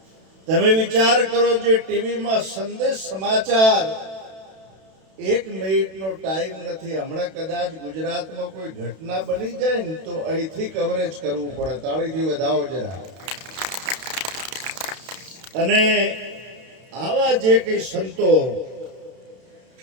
તમે વિચાર કરો, જે ટીવીમાં સંદેશ સમાચાર, 1 મિનિટનો ટાઈમ નથી. હમણાં કદાચ ગુજરાતમાં કોઈ ઘટના બની જાય ને તો અહીંથી કવરેજ કરવું પડે. તાળીથી વધાવો જરા. અને આવા જે કઈ સંતો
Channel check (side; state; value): left; late; 32 ms